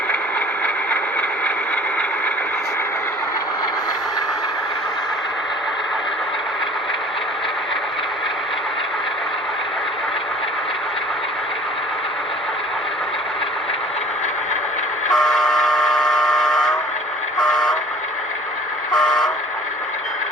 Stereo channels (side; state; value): both; normal; correlation 0.48